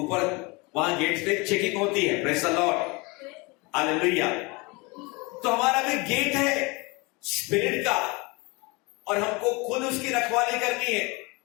वहां गेट पे चेकिंग होती है। Praise the Lord, hallelujah. तो हमारा भी गेट है स्पिरिट का, और हमको खुद उसकी रखवाली करनी है।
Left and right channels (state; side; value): quieter; right; 26.5 dB